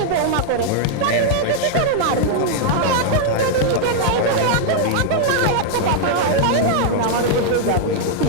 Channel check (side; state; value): both; different; correlation -0.01